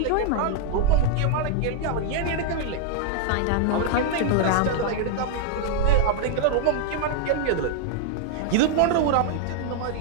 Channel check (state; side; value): different; both; correlation -0.01